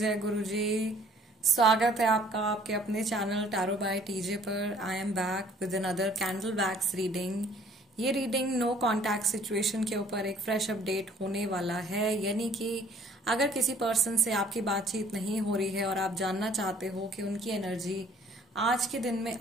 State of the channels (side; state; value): both; normal; correlation 0.57